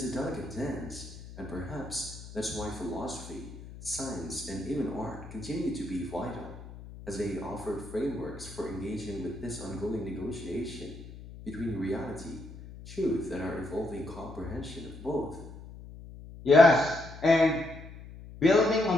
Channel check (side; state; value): left; noise; hum, 14 dB below the sound